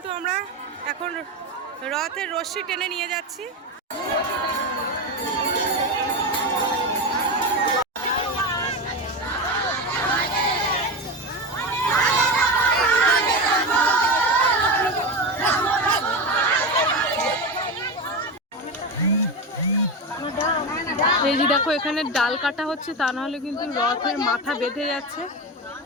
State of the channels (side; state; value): both; normal; correlation 0.19